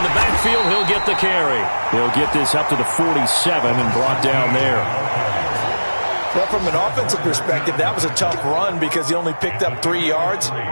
the backfield, he'll get the carry. He'll get this up to the 47 and brought down there. Well, from an offensive perspective, that was a tough run because he only picked up 3 yards.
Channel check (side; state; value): both; inverted; correlation -1.00